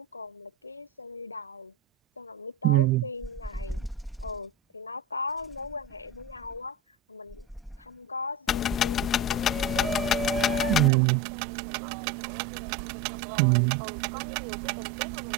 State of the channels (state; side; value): drops out; left; at 10.9 s